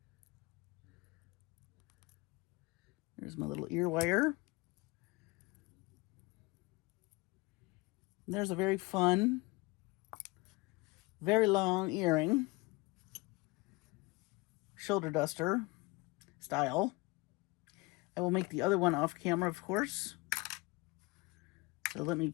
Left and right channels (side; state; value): right; quieter; 24.1 dB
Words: There's my little ear wire. There's a very fun, very long earring. Shoulder duster style. I will make the other one off camera, of course. So let me